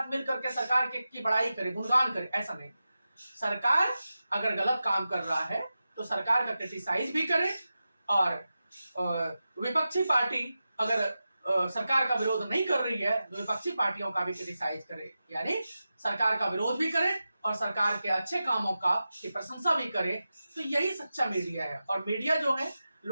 मिल करके सरकार की बड़ाई करे, गुणगान करे, ऐसा नहीं। सरकार अगर गलत काम कर रहा है तो सरकार का क्रिटिसाइज भी करे और विपक्षी पार्टी अगर सरकार का विरोध नहीं कर रही है तो विपक्षी पार्टियों का भी क्रिटिसाइज करे, यानी सरकार का विरोध भी करे और सरकार के अच्छे कामों की प्रशंसा भी करे। तो यही सच्चा मीडिया है। और मीडिया जो है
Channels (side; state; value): both; inverted; correlation -0.93